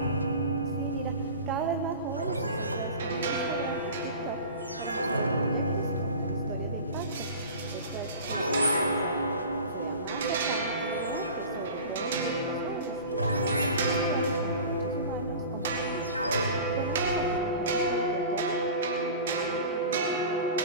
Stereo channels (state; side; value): inverted; both; correlation -0.37